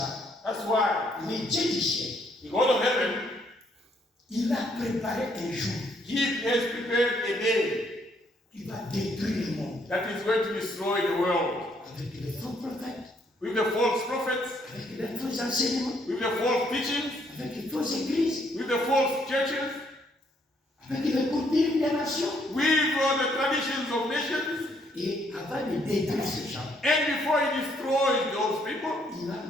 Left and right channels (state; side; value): normal; both; correlation 0.69